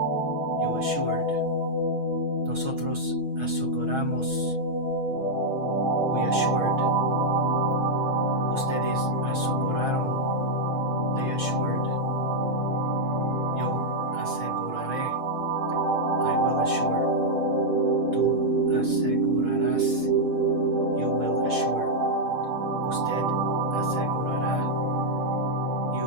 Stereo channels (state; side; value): late; left; 6.2 ms